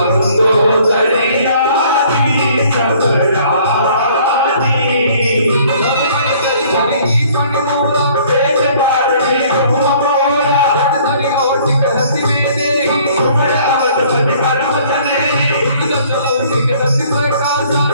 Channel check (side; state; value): both; inverted; correlation -0.57